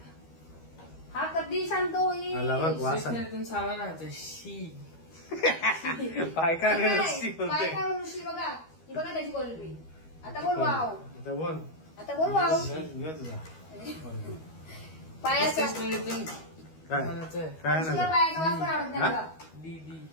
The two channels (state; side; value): late; right; 12 ms